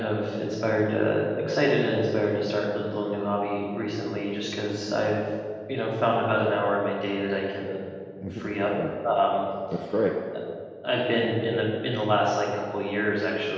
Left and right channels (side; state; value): both; identical; correlation 1.00